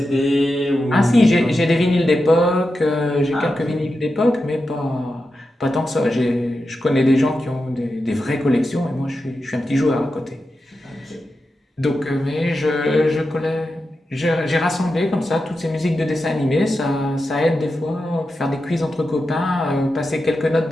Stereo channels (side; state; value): both; normal; correlation 0.90